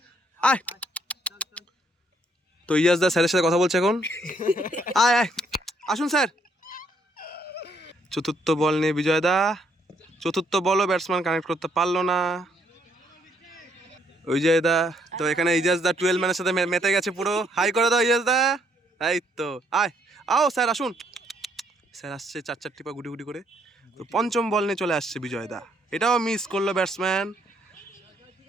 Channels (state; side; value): normal; both; correlation 0.70